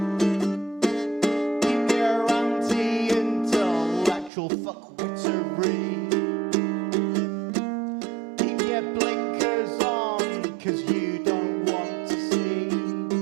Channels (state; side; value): drops out; left; at 4.3 s